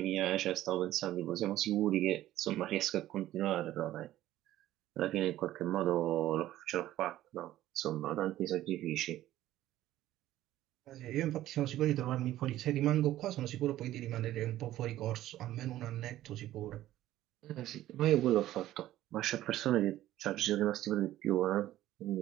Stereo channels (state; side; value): quieter; left; 14.1 dB